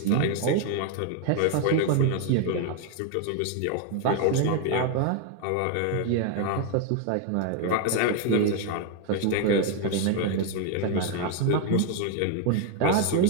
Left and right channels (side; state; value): both; different; correlation 0.01